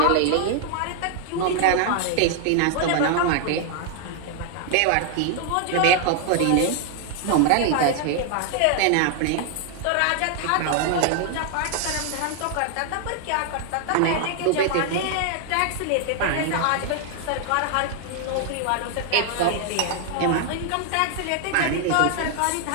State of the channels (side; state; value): both; different; correlation 0.00